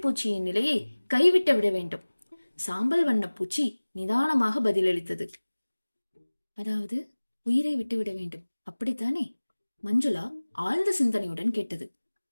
நிலையை கைவிட்டு விட வேண்டும். சாம்பல் வண்ண பூச்சி நிதானமாக பதிலளித்தது. அதாவது உயிரை விட்டுவிட வேண்டும், அப்படித்தானே? மஞ்சுளா ஆழ்ந்த சிந்தனையுடன் கேட்டது.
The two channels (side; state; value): both; inverted; correlation -1.00